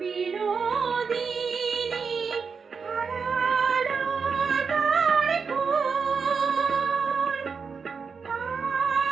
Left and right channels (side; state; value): left; quieter; 5.6 dB